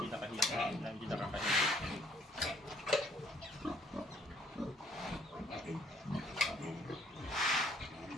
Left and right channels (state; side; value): normal; both; correlation 0.64